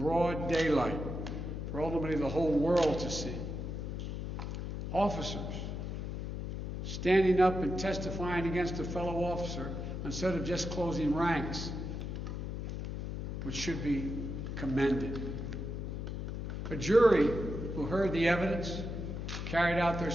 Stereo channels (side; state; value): left; noise; hum, 4 dB below the sound